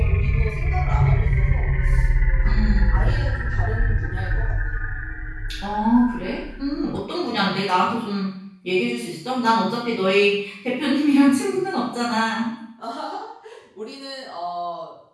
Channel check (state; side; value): identical; both; correlation 1.00